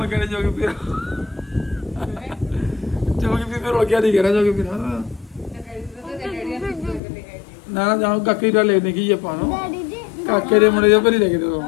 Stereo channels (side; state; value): right; drops out; at 7.0 s